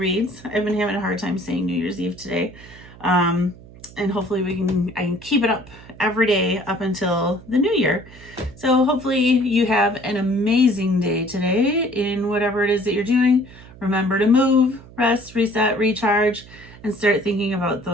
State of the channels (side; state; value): right; noise; hum, 20 dB below the sound